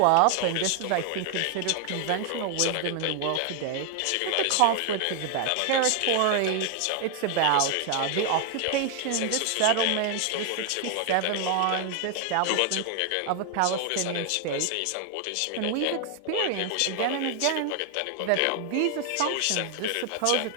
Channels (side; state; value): both; different; correlation 0.00